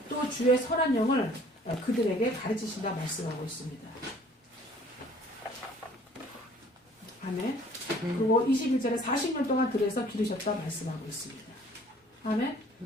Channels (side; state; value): both; normal; correlation 0.55